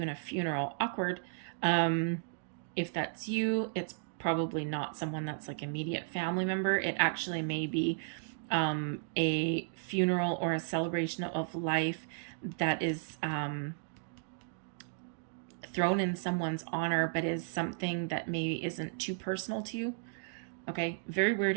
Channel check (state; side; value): silent; left; digital silence